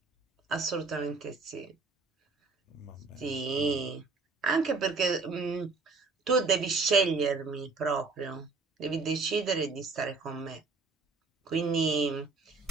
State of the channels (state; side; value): quieter; left; 4.1 dB